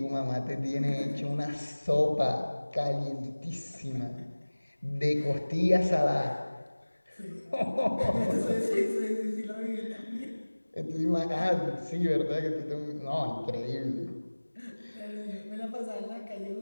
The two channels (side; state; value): both; inverted; correlation -1.00